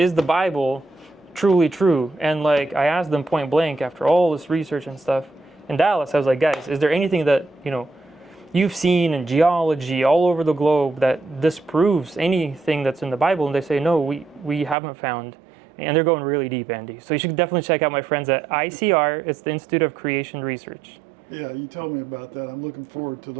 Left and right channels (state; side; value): drops out; left; at 14.8 s